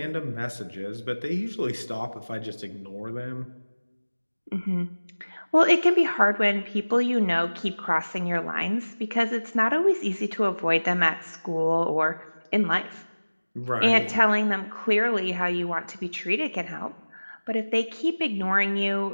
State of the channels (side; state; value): both; inverted; correlation -1.00